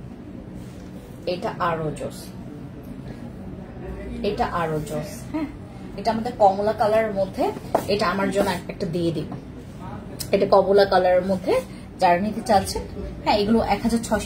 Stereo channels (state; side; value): identical; both; correlation 1.00